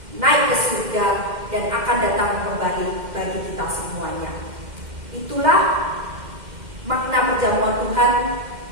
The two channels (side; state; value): left; late; 2.1 ms